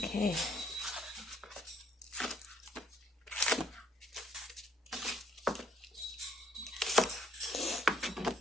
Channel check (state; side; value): normal; both; correlation 0.68